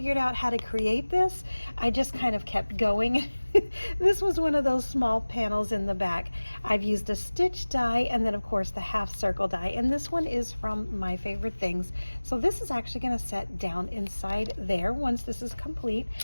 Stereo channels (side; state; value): both; inverted; correlation -1.00